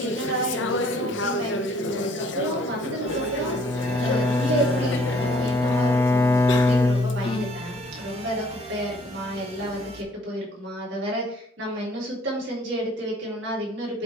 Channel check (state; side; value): normal; both; correlation 0.59